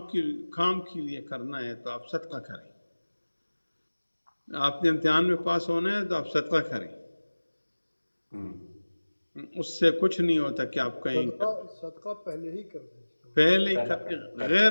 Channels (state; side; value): inverted; both; correlation -1.00